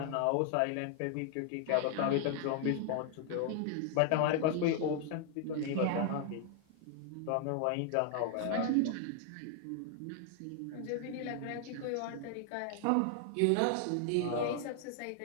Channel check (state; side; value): different; both; correlation 0.00